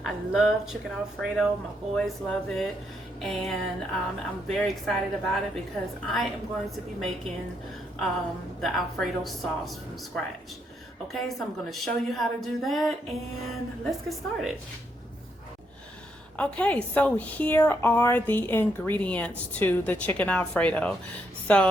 I love chicken Alfredo. My boys love it, and I'm very excited about it because I am going to be making the Alfredo sauce from scratch. Okay, so I'm going to show you how to do that, and let's get started. Okay, so here are the ingredients to the chicken Alfredo.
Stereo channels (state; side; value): normal; both; correlation 0.77